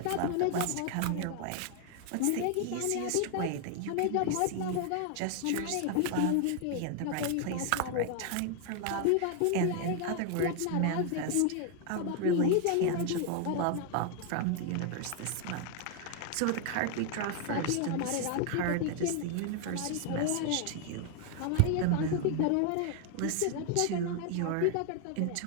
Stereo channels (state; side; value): different; both; correlation 0.00